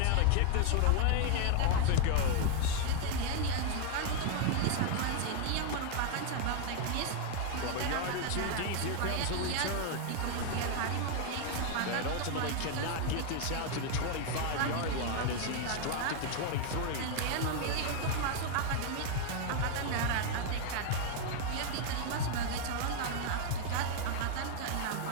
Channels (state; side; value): different; both; correlation 0.00